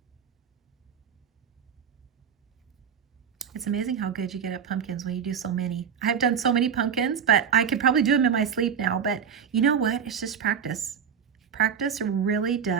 It's amazing how good you get at pumpkins when you do so many. I've done so many pumpkins, but I could probably do them in my sleep now. But you know what? It's just practice. Practice really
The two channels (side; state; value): left; quieter; 7.5 dB